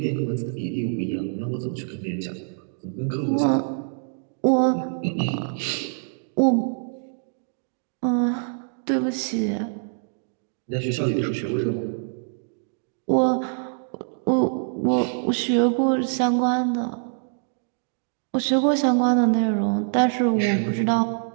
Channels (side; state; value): left; silent; digital silence